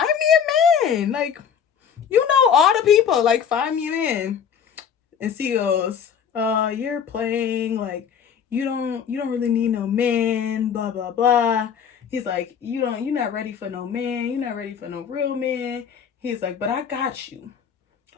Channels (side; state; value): right; quieter; 7.7 dB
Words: me a man. Like, all the people. Like, find me a man. And C goes, you're playing. Like, you don't really need no man. Blah blah blah. He's like, you're not ready for no man. You're not ready for no real man. He's like, but I got you.